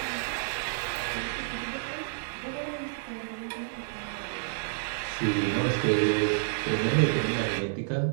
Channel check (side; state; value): left; silent; digital silence